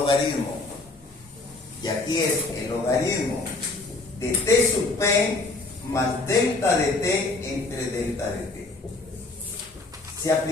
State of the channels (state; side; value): quieter; right; 3.2 dB